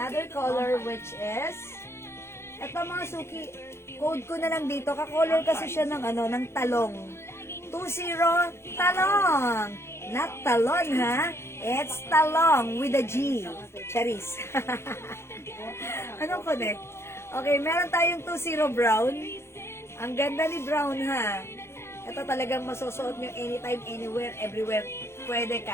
color which is eto mga suki, code ko na lang dito, ka-color kasi siya ng ng talong. 20 talong. Not talon ha. It's talong with a G. Charis. Anong connect? Okay, meron tayong 20 brown. Ang ganda ni brown ha. Ito talagang masusuot nyo anytime, anywhere, everywhere. Pwede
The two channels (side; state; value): right; late; 0.12 ms